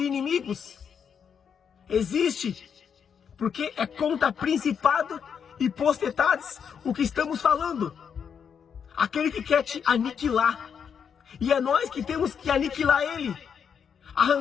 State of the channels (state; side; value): quieter; right; 7.2 dB